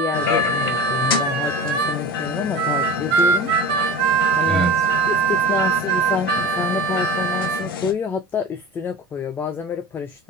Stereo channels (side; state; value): both; normal; correlation 0.33